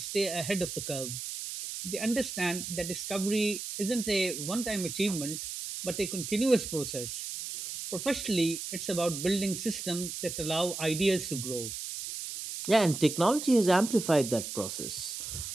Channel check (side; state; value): right; noise; hiss, 6 dB below the sound